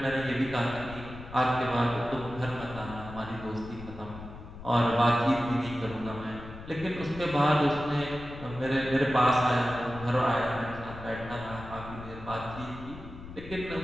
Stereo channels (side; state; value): left; noise; rumble, 14 dB below the sound